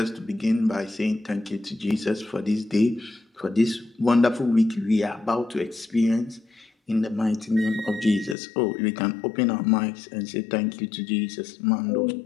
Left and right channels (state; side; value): drops out; right; at 8.3 s